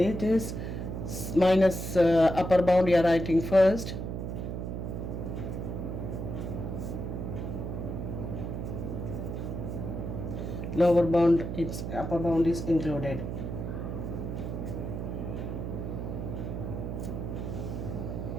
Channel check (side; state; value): right; noise; hum, 4 dB below the sound